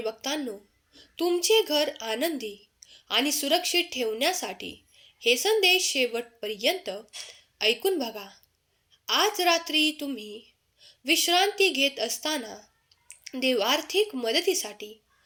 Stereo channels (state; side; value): identical; both; correlation 1.00